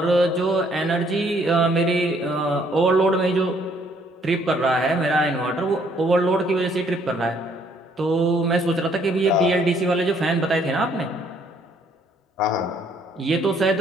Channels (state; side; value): normal; both; correlation 0.65